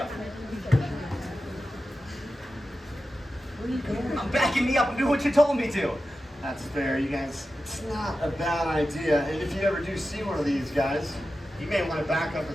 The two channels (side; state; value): both; normal; correlation 0.92